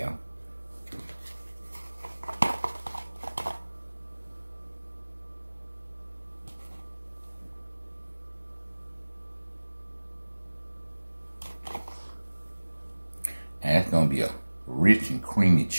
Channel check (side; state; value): both; inverted; correlation -1.00